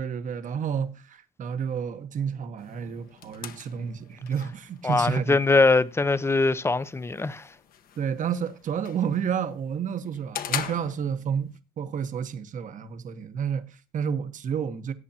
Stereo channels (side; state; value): both; normal; correlation 0.67